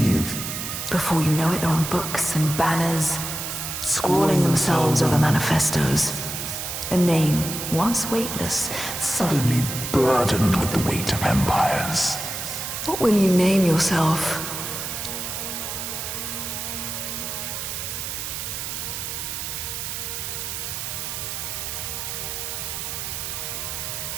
Before you know it, they're on books and banners, scrawling themselves over manifestos. A name, once weightless, suddenly burdened with the weight of empires. What will you name yourself?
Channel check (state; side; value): noise; right; hiss, 5 dB below the sound